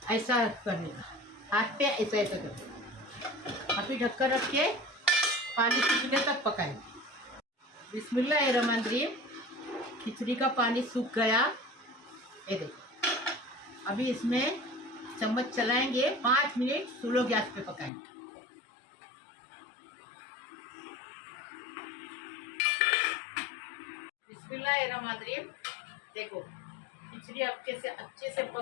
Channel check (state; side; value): drops out; right; at 17.9 s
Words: ऐसा करने का, हाथ पे ऐसा ऐसा करके। अभी ढक्कन रख के पानी सूखने तक पकाएंगे। बिस्मिल्लाहिर्रहमानिर्रहीम। खिचड़ी का पानी सूख गया, ये देखो। अभी इसमें चम्मच चलाएंगे, 5 मिनट स्लो गैस पे पकाएंगे। बिस्मिल्लाहिर्रहमानिर्रहीम। देखो खिचड़ी अच्छे से